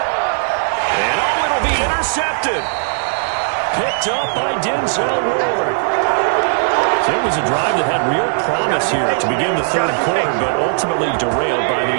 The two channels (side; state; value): left; silent; 66 dB below the other